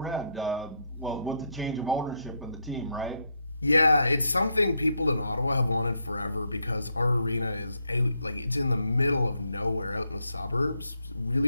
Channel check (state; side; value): inverted; both; correlation -0.78